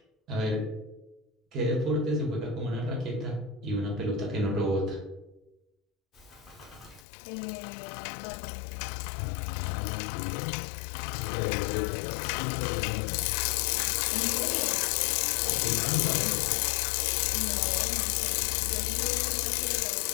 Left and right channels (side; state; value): right; drops out; at 7.1 s